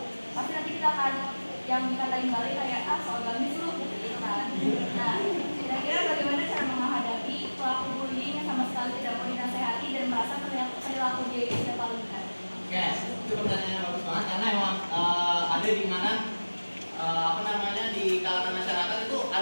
Pasti nanti kita akan yang dikatain balik kayak soal gamis lu gitu kan. Nah, kira-kira bagaimana cara menghadapi pelaku bullying yang sama sekali tidak mau dinasehati dan merasa perilaku dia itu tidak terlalu benar? Oke, itu pertanyaan yang bagus banget karena emang ada di mana apa namanya di kalangan masyarakat itu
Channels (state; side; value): inverted; both; correlation -1.00